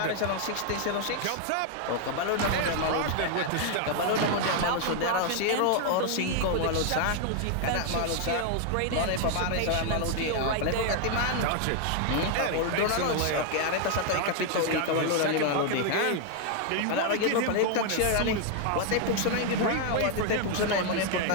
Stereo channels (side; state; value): both; different; correlation 0.00